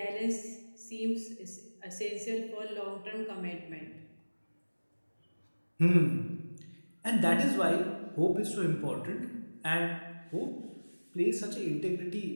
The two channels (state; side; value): inverted; both; correlation -1.00